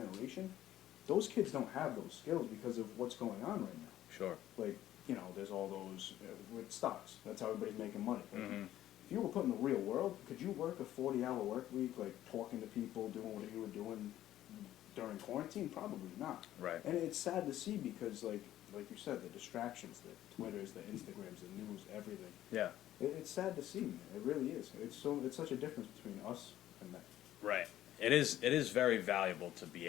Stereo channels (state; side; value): quieter; right; 13.0 dB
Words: those kids don't have those skills because of what's going on right now. Sure. Like, you know, there's all those with stocks. That's how everybody's making money. Like, Mhm. if you were put in the real world, could you work a 40-hour work week, like talking to people, doing what you were doing during quarantine? Probably not. Right. And it's sad to see because, like you said, the distractions, the Twitters, the Instagrams, the news, everything. Yeah. It's sad to see, man. It really is. It's such a difference between us and them. Right. It is very valuable to be